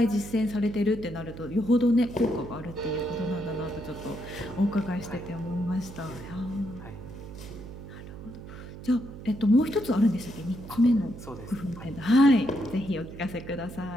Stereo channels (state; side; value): noise; right; hum, 13 dB below the sound